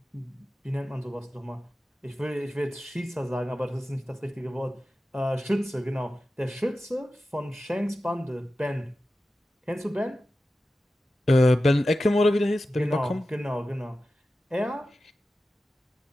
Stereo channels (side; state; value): both; normal; correlation 0.93